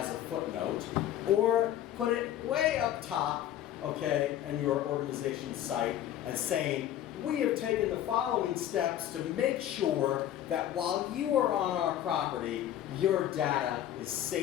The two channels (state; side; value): quieter; right; 11.7 dB